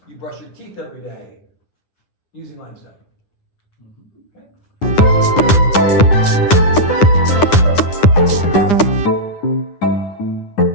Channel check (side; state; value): right; late; 9.9 ms